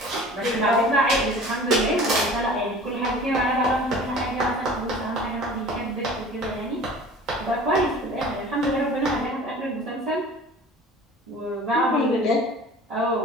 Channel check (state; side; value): normal; both; correlation 0.43